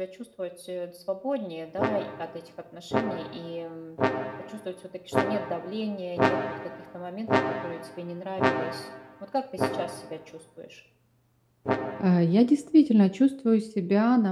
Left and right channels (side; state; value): both; identical; correlation 1.00